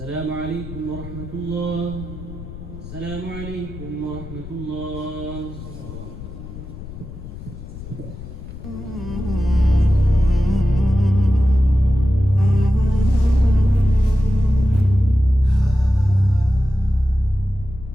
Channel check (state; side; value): noise; left; rumble, 13 dB below the sound